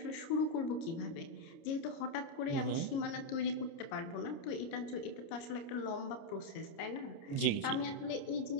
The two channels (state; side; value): late; right; 29 ms